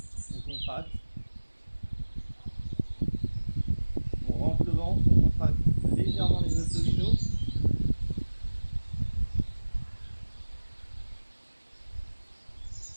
On contracte. On rentre le ventre, on contracte légèrement les abdominaux.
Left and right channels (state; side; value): inverted; both; correlation -1.00